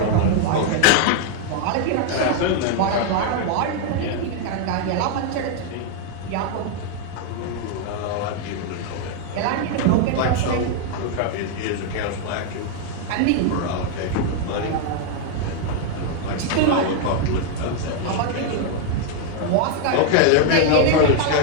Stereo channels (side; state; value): both; different; correlation 0.00